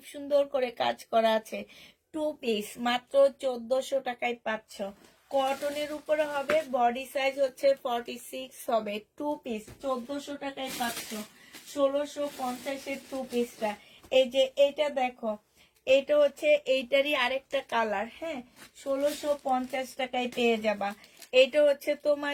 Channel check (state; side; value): identical; both; correlation 1.00